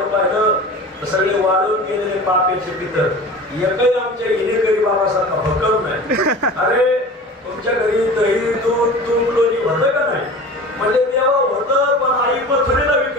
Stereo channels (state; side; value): normal; both; correlation 0.37